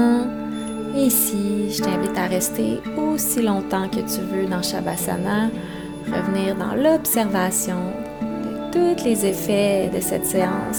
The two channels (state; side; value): identical; both; correlation 1.00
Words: Et ici, je t'invite à rester aussi longtemps que tu veux dans Shavasana, revenir dans l'observation de tous les effets de cette